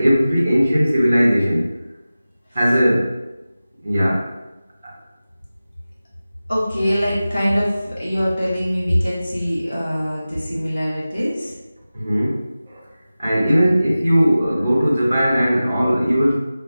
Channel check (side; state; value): both; inverted; correlation -0.96